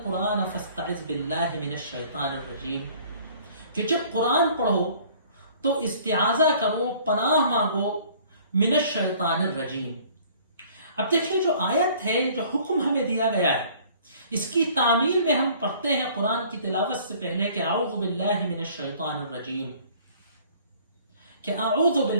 فاستعذ باللہ من الشیطان الرجیم، کہ جب قرآن پڑھو تو استعاذہ کرو، پناہ مانگو من الشیطان الرجیم. اب دیکھیں جو آیت ہے، جو حکم ہمیں دیا گیا ہے، اس کی تعمیل میں ہم پڑھتے ہیں قرآن کی تلاوت سے پہلے کہ اعوذ باللہ من الشیطان الرجیم، کہ اعوذ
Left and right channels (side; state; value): both; inverted; correlation -0.53